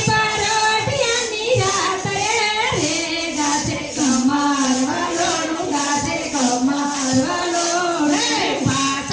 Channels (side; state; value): both; identical; correlation 1.00